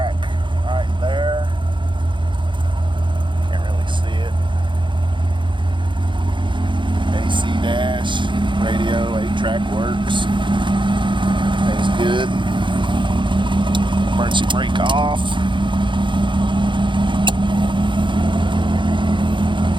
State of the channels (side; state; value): left; late; 0.23 ms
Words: right there. Can't really see it. AC dash, radio, 8-track works. Everything's good. emergency brake off.